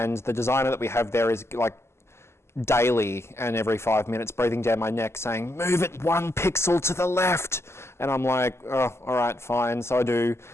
the designer that we have there is like daily and every 5 minutes breathing down my neck saying, move it 1 pixel to the left. And I'm like, oh, all right, fine. So I do.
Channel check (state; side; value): late; right; 0.13 ms